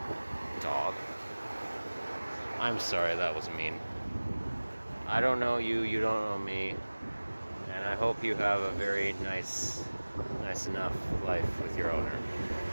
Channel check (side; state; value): both; inverted; correlation -1.00